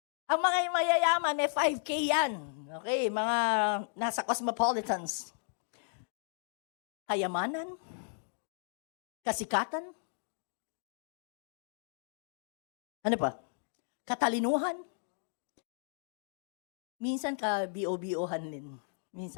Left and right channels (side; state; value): right; silent; digital silence